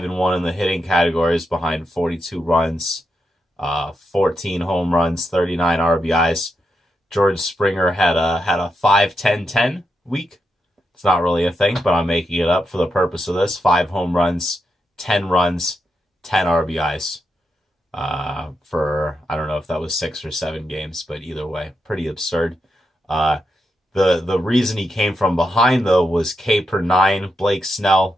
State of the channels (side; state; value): both; normal; correlation 0.85